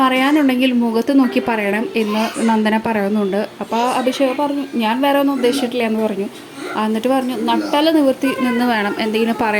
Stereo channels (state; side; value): identical; both; correlation 1.00